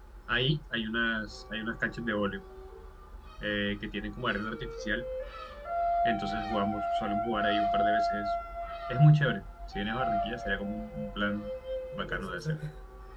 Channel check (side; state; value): both; identical; correlation 1.00